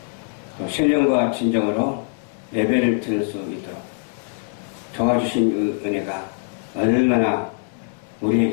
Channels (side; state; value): right; silent; 64 dB below the other